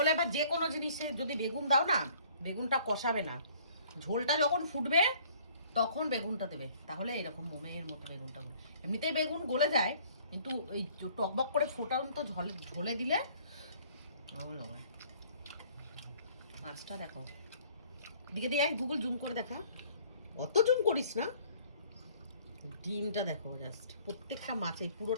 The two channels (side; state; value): both; inverted; correlation -0.56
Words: বা যে কোনো জিনিসে যদি বেগুন দাও না, বেগুনটা কষাবে না, ঝোলটা যখন ফুটবে তখন বেগুনটা দেবে, তাহলে এরকম মোমের মতো বেগুনটা গলে। এমনিতেই বেগুন গলে যায়, কিন্তু এই টকবক করে ফোটান্ত ঝোলে দিলে ভালো লাগে। মাছটা দেখো, দিকে দিয়ে গুগল জুম করে দেখা, অত জুম করিস না। ডিমটা দেখো, জাস্ট প্রত্যেকটা মাছে